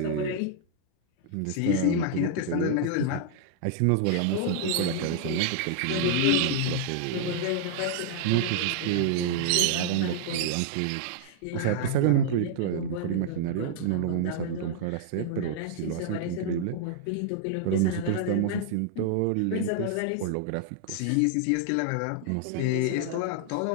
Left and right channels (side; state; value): both; different; correlation -0.01